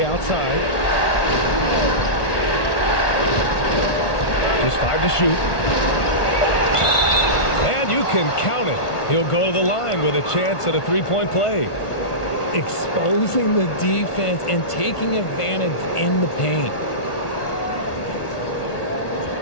outside. Just 5 to shoot. And you can count it. He'll go to the line with a chance at a three-point play. Exposing the defense and taking advantage in the paint.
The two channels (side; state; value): right; late; 1.2 ms